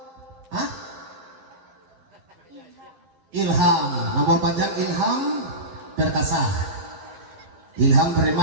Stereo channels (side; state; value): left; late; 12 ms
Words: Hah? Ilham. Nomor panjang Ilham Perkasa. Ilham